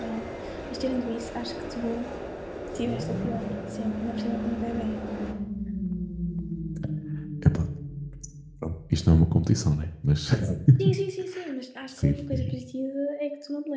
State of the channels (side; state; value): both; identical; correlation 1.00